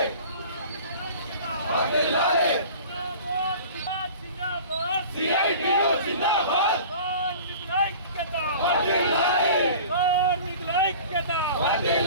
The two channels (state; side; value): inverted; both; correlation -0.42